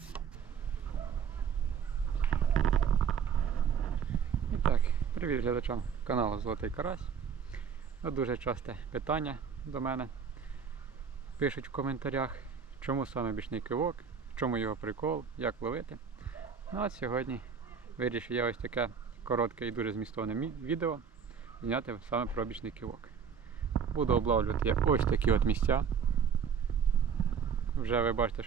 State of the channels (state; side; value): quieter; left; 6.8 dB